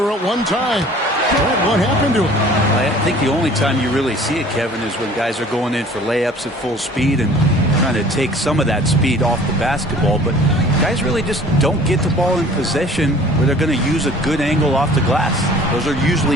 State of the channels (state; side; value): normal; both; correlation 0.49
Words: at one time. What happened to him? I think the only time you really see it, Kevin, is when guys are going in for layups at full speed and trying to take some of that speed off the basketball. But guys really just don't get the ball in possession where they're going to use a good angle off the glass. Those are usually